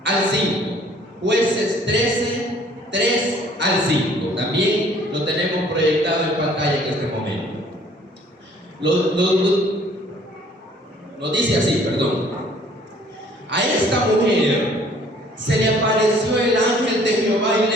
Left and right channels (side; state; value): both; normal; correlation 0.57